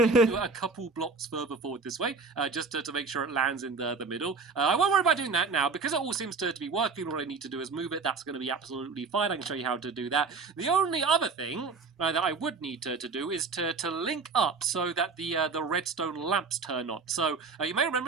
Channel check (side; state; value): left; quieter; 4.7 dB